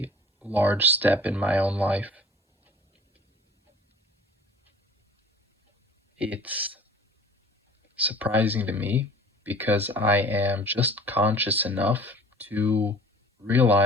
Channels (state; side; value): normal; both; correlation 0.46